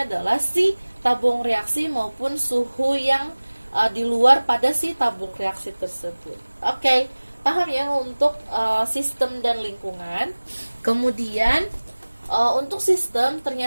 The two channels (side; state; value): both; inverted; correlation -1.00